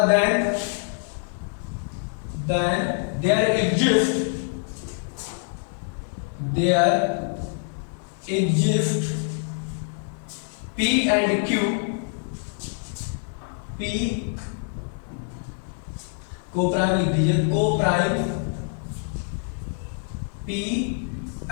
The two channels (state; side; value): silent; right; 61 dB below the other